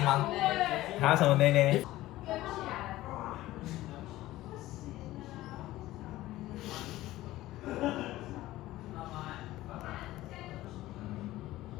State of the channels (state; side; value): quieter; right; 16.3 dB